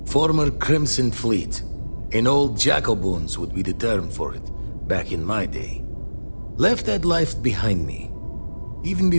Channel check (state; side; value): inverted; both; correlation -1.00